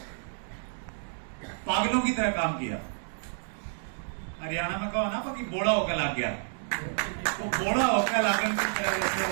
पागलों की तरह काम किया। हरियाणा में कहो ना कि बोड़ा होकर लग गया, तो बोड़ा होकर लागन की तरह जैसे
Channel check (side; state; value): left; silent; digital silence